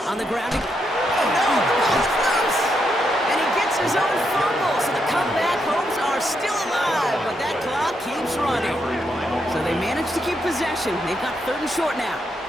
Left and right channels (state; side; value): normal; both; correlation 0.80